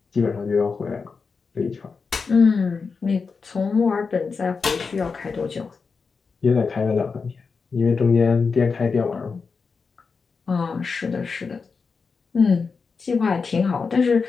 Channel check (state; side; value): quieter; right; 5.0 dB